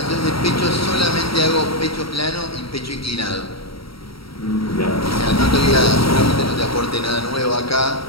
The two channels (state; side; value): late; right; 0.75 ms